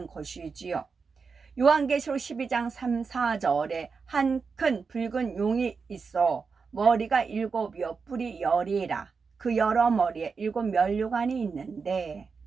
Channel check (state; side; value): quieter; left; 5.2 dB